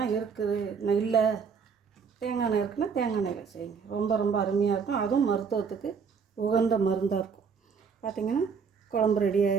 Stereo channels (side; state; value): left; quieter; 6.0 dB